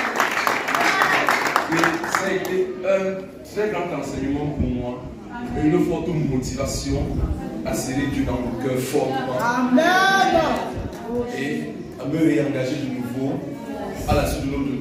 Et ça a été un très grand enseignement pour moi, et une forte motivation à serrer Dieu dans mon cœur fortement. Amen. Et à me réengager de nouveau à la suite de notre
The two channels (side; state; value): both; identical; correlation 1.00